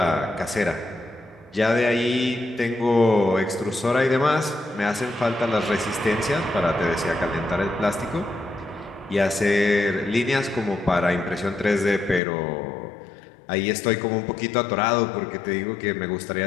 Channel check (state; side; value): drops out; right; at 12.2 s